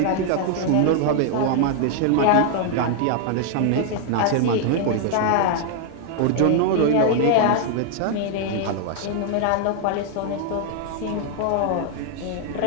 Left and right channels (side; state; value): both; different; correlation 0.00